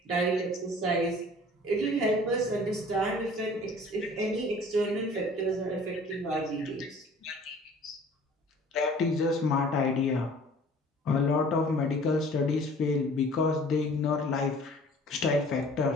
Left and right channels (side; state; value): both; normal; correlation 0.49